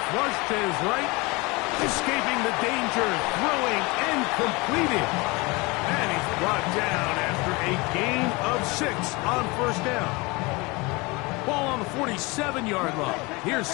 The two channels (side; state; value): right; quieter; 25.3 dB